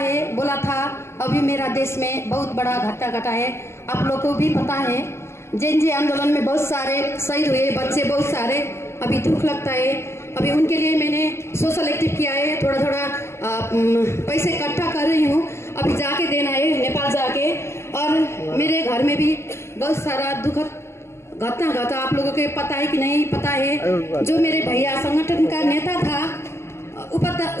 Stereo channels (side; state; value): right; late; 0.13 ms